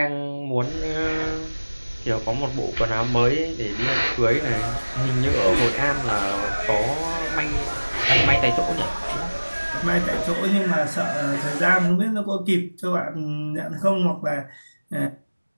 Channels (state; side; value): inverted; both; correlation -1.00